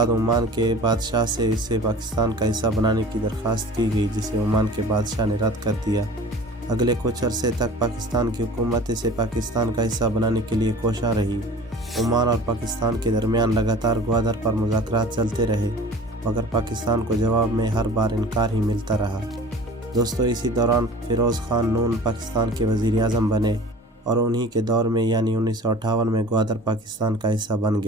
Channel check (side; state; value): both; normal; correlation 0.43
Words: ओमान के बादशाह से इसे पाकिस्तान का हिस्सा बनाने की दरख्वास्त की गई, जिसे ओमान के बादशाह ने रद्द कर दिया। अगले कुछ अरसे तक पाकिस्तान की हुकूमत इसे पाकिस्तान का हिस्सा बनाने के लिए कोशा रही। ओमान और पाकिस्तान के दरमियान लगातार ग्वादर पर मुज़ाकरात चलते रहे, मगर पाकिस्तान को जवाब में हर बार इनकार ही मिलता रहा। दोस्तों, इसी दौरान फ़िरोज़ ख़ान नून पाकिस्तान के वज़ीर आज़म बने और उन्हीं के दौर में यानी 1958 में ग्वादर पाकिस्तान का हिस्सा बन